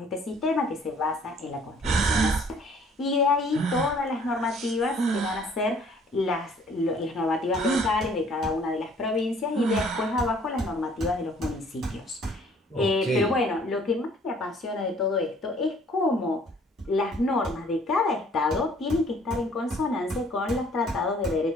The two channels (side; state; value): both; normal; correlation 0.57